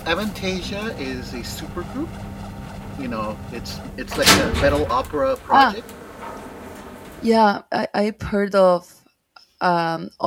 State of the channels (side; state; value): both; identical; correlation 1.00